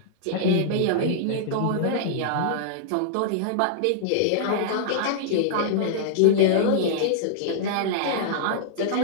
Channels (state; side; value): different; both; correlation -0.01